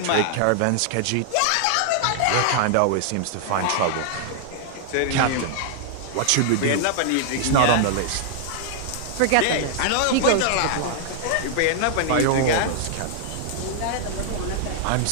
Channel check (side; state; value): both; different; correlation -0.01